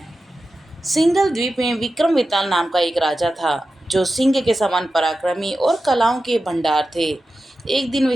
सिंघल द्वीप में विक्रम वेताल नाम का एक राजा था, जो सिंह के समान पराक्रमी और कलाओं के भंडार थे। एक दिन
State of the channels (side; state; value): both; normal; correlation 0.92